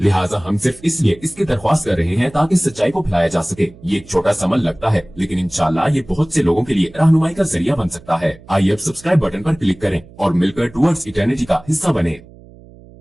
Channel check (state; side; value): noise; right; hum, 22 dB below the sound